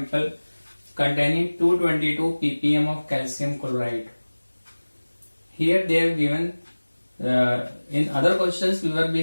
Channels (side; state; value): both; inverted; correlation -1.00